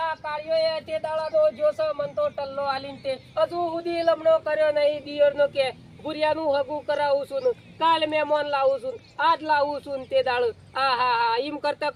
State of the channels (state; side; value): identical; both; correlation 1.00